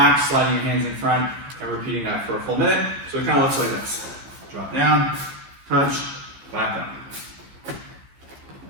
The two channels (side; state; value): left; late; 14 ms